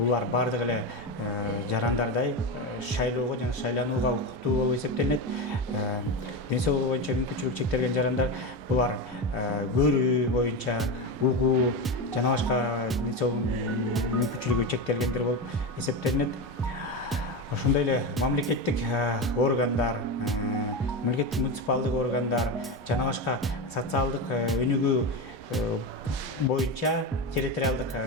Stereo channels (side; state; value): both; normal; correlation 0.18